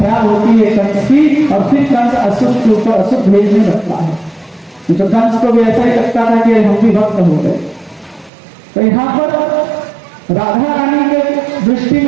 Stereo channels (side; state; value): left; drops out; at 8.3 s